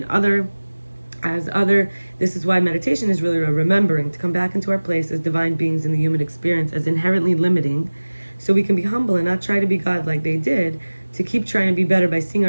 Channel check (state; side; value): inverted; both; correlation -1.00